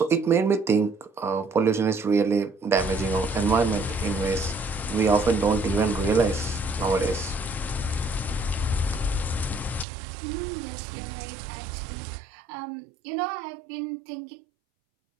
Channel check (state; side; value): drops out; left; at 9.9 s